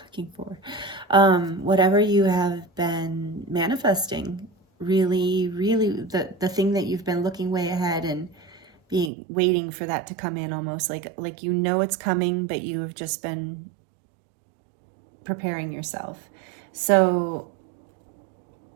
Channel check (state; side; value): drops out; left; at 9.1 s